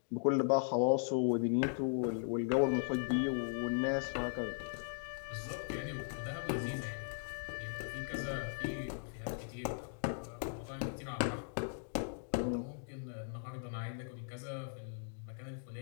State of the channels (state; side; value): silent; right; digital silence